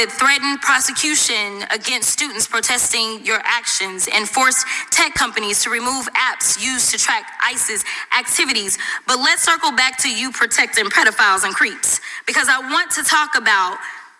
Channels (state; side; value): identical; both; correlation 1.00